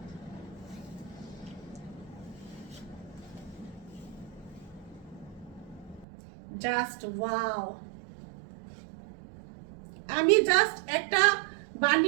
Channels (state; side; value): drops out; left; at 6.1 s